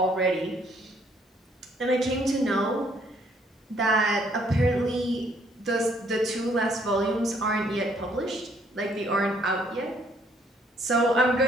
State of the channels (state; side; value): normal; both; correlation 0.65